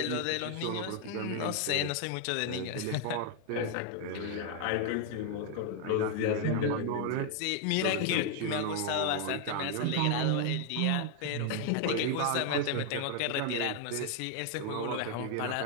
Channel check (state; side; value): different; both; correlation 0.00